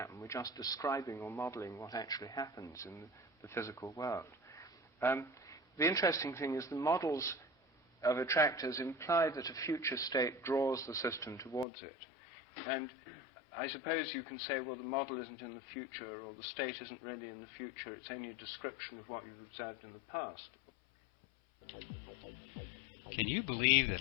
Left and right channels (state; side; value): drops out; right; at 11.7 s